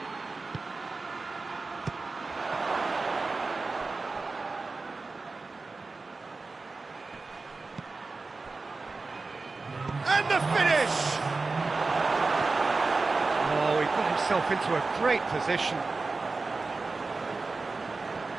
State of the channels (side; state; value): left; quieter; 3.8 dB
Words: And the finish! Oh, he got himself into a great position.